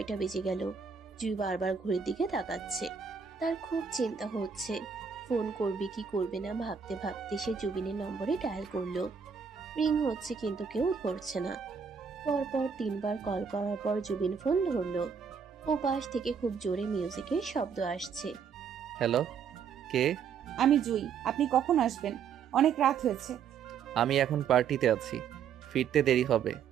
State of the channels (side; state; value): left; quieter; 6.7 dB